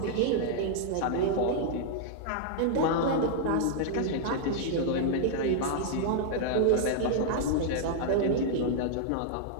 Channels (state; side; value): different; both; correlation -0.01